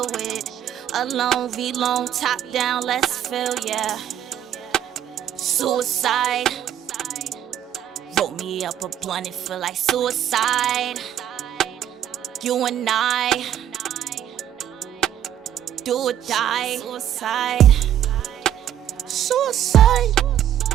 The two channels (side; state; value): left; quieter; 10.6 dB